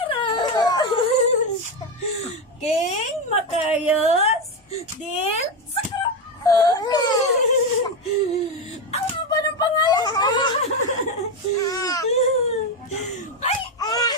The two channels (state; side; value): normal; both; correlation 0.11